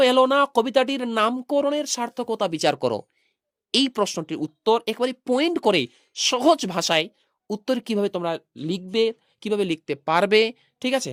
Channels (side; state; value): both; identical; correlation 1.00